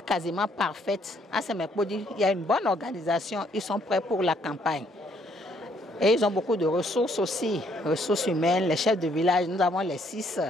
parfaite. À Semekodji, il y a une bonne organisation, ils sont prêts pour la campagne. Et ils ont beaucoup de ressources aussi, ressources humaines, les chefs de village. Nous avons les six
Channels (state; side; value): normal; both; correlation 0.68